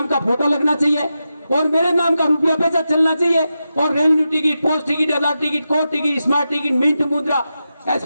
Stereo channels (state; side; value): inverted; both; correlation -0.90